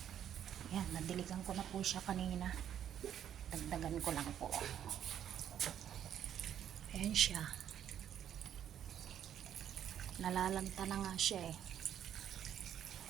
Yan, nadiligan ko na po siya kanina. Dagdagan ko lang po. Ayan siya. Nalalanta na nga siya eh.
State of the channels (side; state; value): left; quieter; 9.9 dB